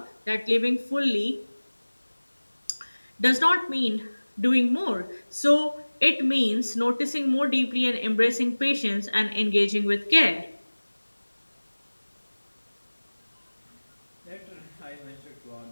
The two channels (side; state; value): both; inverted; correlation -1.00